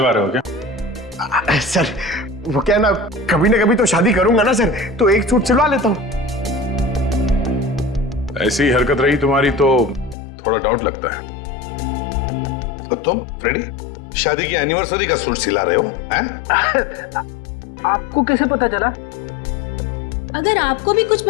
रहे हो क्या? सर वो क्या ना कभी तो शादी करूंगा ना सर, तो एक सूट सिलवा लेता हूँ। ऐसी हरकत रही तुम्हारी तो थोड़ा डाउट लगता है। तो तुम फ्रेडी शादी की एनिवर्सरी का सूट सिला रहे हो हैं? आपको कैसे पता चला? अगर आपको भी कुछ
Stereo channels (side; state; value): right; drops out; at 10.2 s